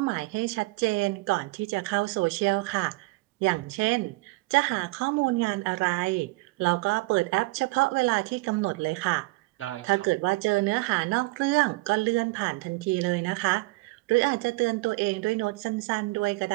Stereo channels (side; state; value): left; quieter; 23.6 dB